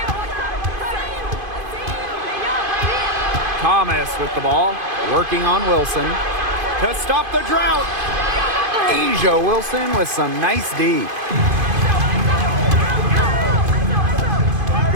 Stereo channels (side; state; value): left; late; 2.5 ms